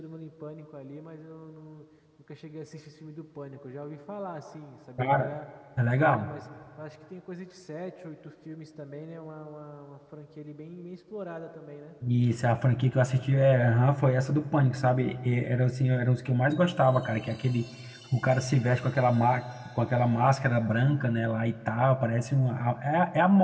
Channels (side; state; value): both; identical; correlation 1.00